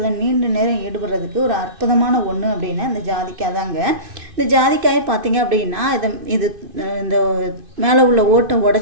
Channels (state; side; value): late; left; 2.5 ms